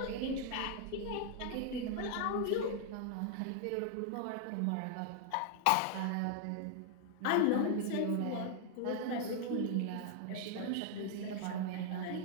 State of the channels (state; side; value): different; both; correlation 0.00